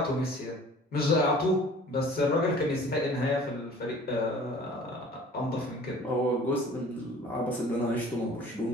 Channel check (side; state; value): both; normal; correlation 0.48